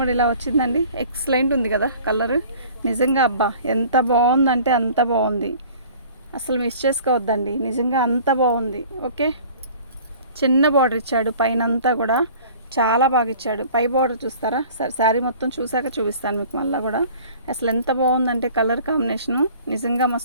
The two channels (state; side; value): inverted; both; correlation -0.48